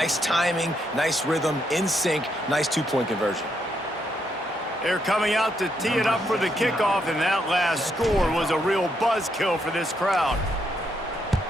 timing, nice rhythm, in sync, nice 2-point conversion. They're coming out to tee it up for the kickoff, and that last score was a real buzzkill for this crowd.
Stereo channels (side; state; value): both; normal; correlation 0.77